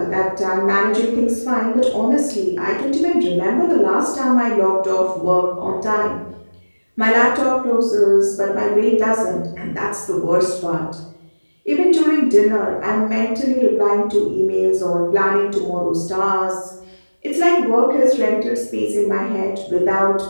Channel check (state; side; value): inverted; both; correlation -1.00